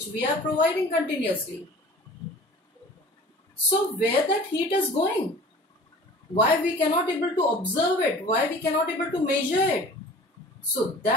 we are providing continuously. So where that heat is going? Why we cannot able to observe it? Why we cannot able to measure it? So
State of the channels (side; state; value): both; normal; correlation 0.44